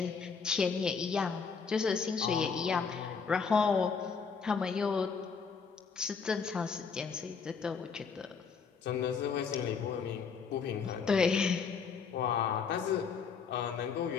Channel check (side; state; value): right; quieter; 5.7 dB